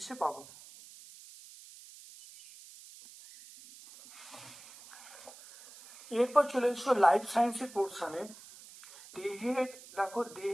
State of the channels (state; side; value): noise; right; hiss, 19 dB below the sound